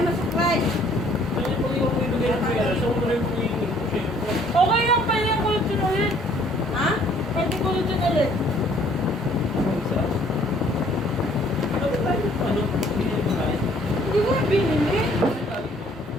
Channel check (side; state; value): both; normal; correlation 0.60